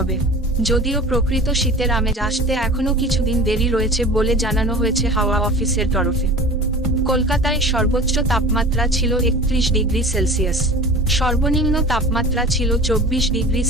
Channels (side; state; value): both; normal; correlation 0.38